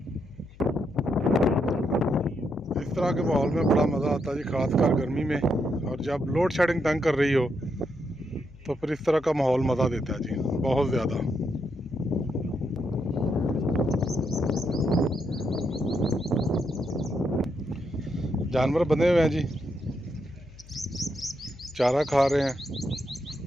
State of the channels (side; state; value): left; noise; hum, 21 dB below the sound